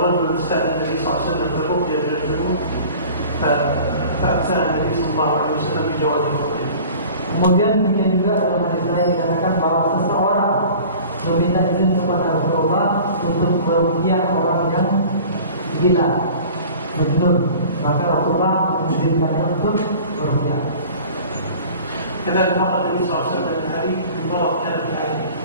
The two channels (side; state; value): both; inverted; correlation -0.43